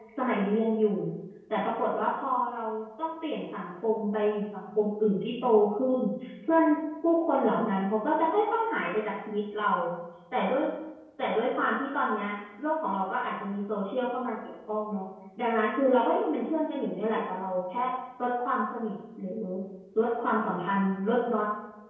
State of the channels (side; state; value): both; identical; correlation 1.00